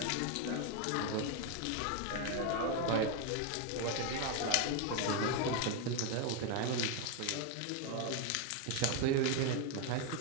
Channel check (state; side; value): different; both; correlation 0.01